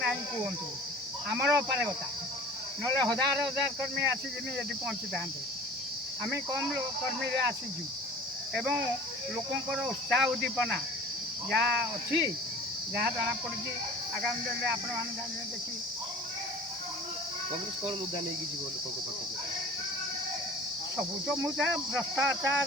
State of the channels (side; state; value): both; normal; correlation 0.43